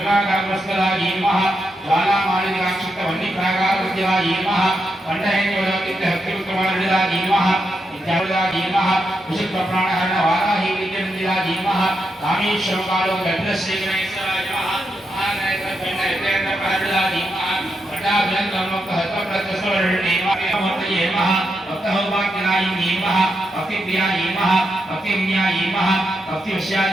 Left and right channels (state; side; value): normal; both; correlation 0.84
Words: धीमः ज्वालामालिकाक्षिप्तवह्निप्राकारविद्या धीमः कंठहेन्द्रवलकितहक्तिविक्रमार्जिता धीमः विद्यावृता धीमः विशुद्धप्राणहरण वाराही विद्यमन्दिरा धीमः कामेश्वरकालो गन्धश्रीगणेश्वरा धीमः महानयकण्डयतेन्द्रपहर्जिता धीमः भट्टाभिनन्दमोक्तहस्तप्रत्यस्वरणीमः भक्तहौभाग्यनायी धीमः भक्तिप्रिया धीमः भक्तिविन्या धीमः भक्तिवश्या